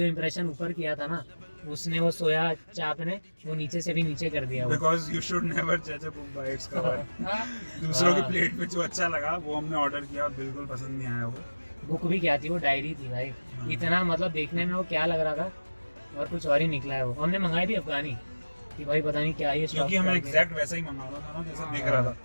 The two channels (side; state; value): both; inverted; correlation -1.00